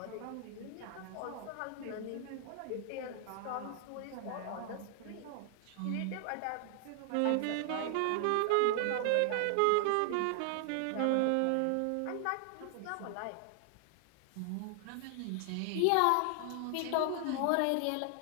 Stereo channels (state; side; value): different; both; correlation 0.00